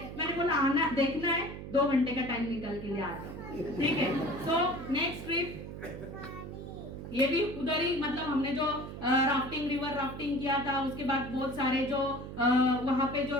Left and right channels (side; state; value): right; noise; hum, 10 dB below the sound